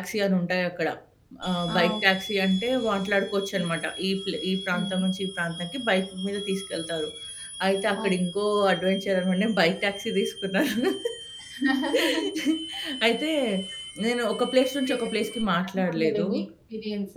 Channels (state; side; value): identical; both; correlation 1.00